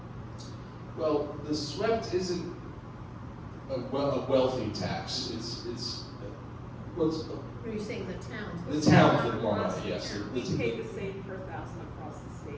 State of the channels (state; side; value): identical; both; correlation 1.00